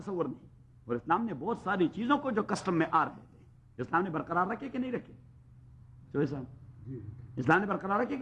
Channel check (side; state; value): both; identical; correlation 1.00